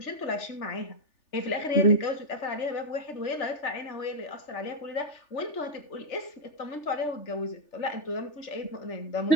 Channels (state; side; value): late; right; 3.4 ms